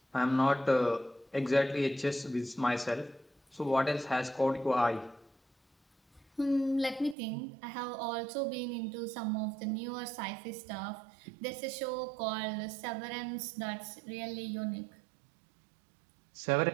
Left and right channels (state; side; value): drops out; left; at 7.2 s